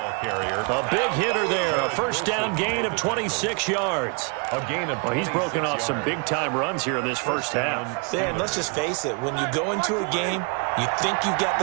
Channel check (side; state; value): left; quieter; 35.0 dB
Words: big hitter there, a 1st down gain of 26 yards. Well, he's broken off some big-time runs here in this first half. Dan, let's just face it. When you go into a game, you think you've got